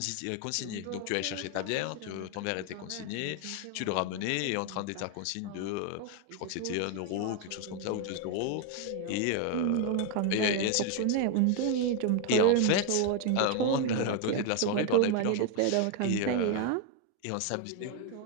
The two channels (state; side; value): different; both; correlation 0.01